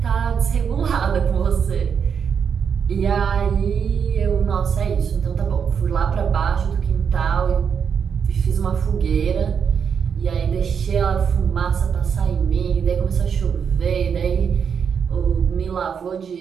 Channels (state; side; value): quieter; left; 6.9 dB